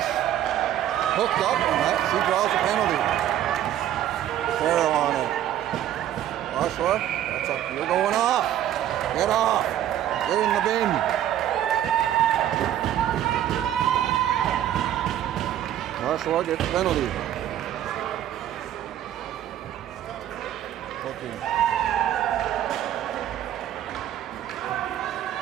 hooked up, and that, she draws a penalty. Farrell on it. Oshawa, that's up. You're going off. Get off. Get in the bin. Oshawa gets the penalty. Okay.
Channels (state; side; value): quieter; left; 11.6 dB